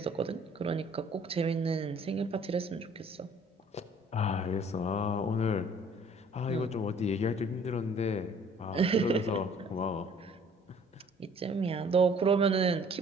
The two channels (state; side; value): normal; both; correlation 0.55